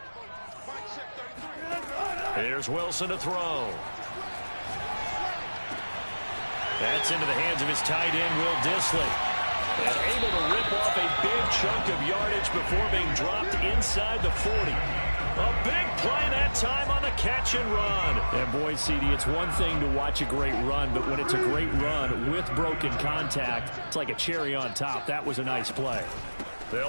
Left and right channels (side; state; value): both; inverted; correlation -1.00